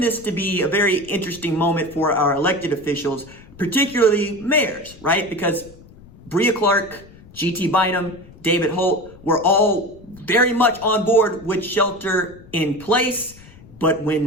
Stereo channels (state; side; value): noise; left; rumble, 22 dB below the sound